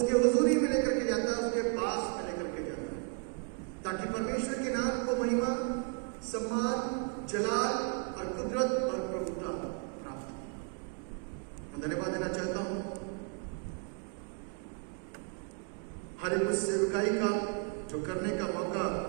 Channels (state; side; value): quieter; left; 34.7 dB